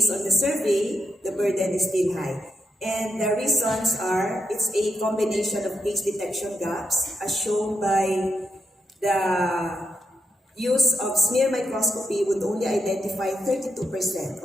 on the survey, the burden is still high. And the reasons are, it's a combination of case detection gaps, as shown by the use of smear microscopy would only identify 32%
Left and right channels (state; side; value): normal; both; correlation 0.83